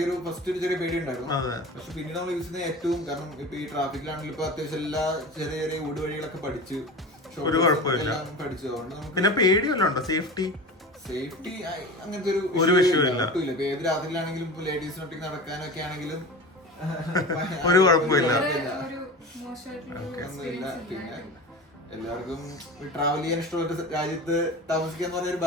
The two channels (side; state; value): both; normal; correlation 0.31